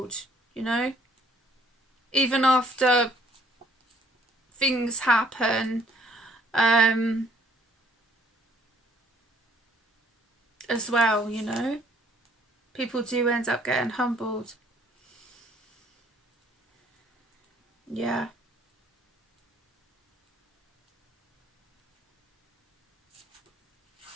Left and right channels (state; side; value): normal; both; correlation 0.62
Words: you know, even after things happen, as well, you know. People do end up getting humbled. Yeah.